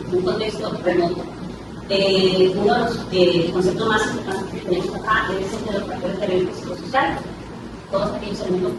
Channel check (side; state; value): both; identical; correlation 1.00